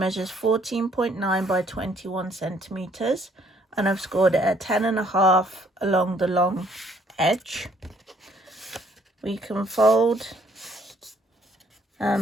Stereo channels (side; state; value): both; normal; correlation 0.64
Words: 14.9 by 21 centimetres. And I've scored it at 10.5 along the long edge. We can fold